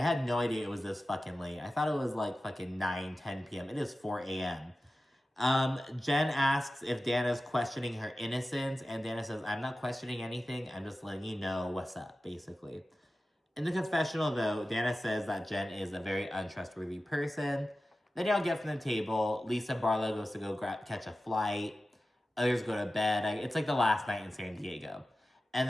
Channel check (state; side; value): normal; both; correlation 0.94